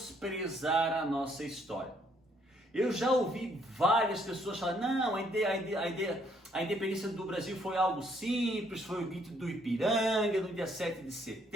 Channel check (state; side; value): normal; both; correlation 0.68